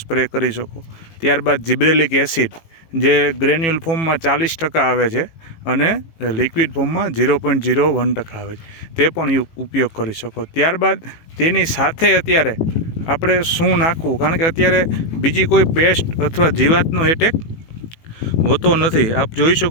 કરી શકો। ત્યારબાદ જિબ્રેલિક એસિડ જે ગ્રેન્યુલ ફોર્મમાં 40% આવે છે અને લિક્વિડ ફોર્મમાં 0.01% આવે છે, તે પણ ઉપયોગ કરી શકો। ત્યારબાદ તેની સાથે અત્યારે આપણે શું નાખવું, કારણ કે અત્યારે બીજી કોઈ પેસ્ટ અથવા જીવાતનો એટેક હોતો નથી। આપ જોઈ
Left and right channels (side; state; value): right; late; 18 ms